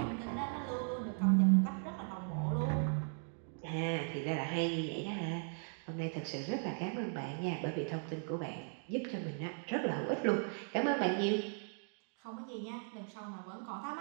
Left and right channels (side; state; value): left; silent; 53 dB below the other